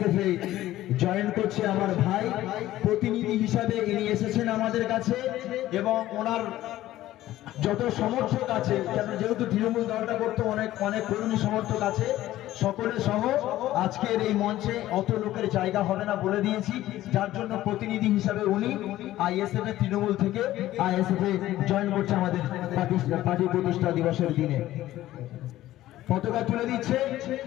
এ জয়েন করছে আমার ভাই। প্রতিনিধি হিসাবে ইনি এসেছেন আমাদের কাছে এবং ওনার যত সমর্থক আছে, যেহেতু তৃণমূল দলটা করতে অনেক কর্মী সমর্থক আছে, সকলে সহ আজকের এই মঞ্চে অত লোকের জায়গা হবে না বলে দিয়েছি, যার জন্য প্রতিনিধি হিসাবে উনি আইএসএফ এর তৃণমূল থেকে আইএসএফ এ জয়েন করছে আমাদের পার্টি প্রতিষ্ঠা দিবসের দিনে। পতাকা তুলে দিচ্ছে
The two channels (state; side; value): quieter; right; 14.7 dB